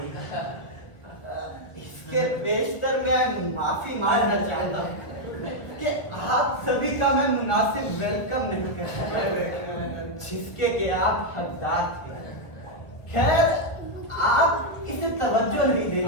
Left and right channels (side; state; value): right; late; 1.2 ms